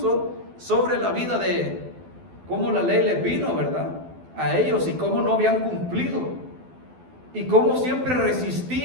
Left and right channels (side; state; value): left; late; 12 ms